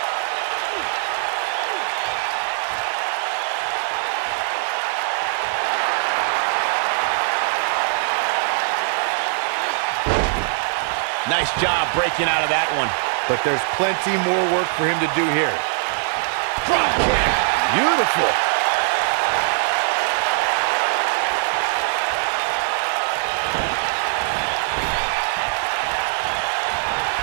Nice job breaking out of that one. But there's plenty more work for him to do here. Drop kick. Beautiful.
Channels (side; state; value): left; silent; digital silence